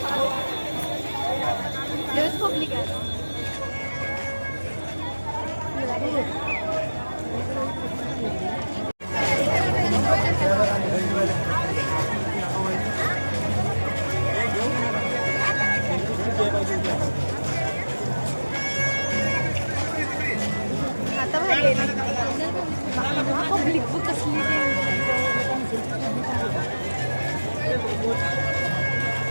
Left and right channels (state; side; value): inverted; both; correlation -1.00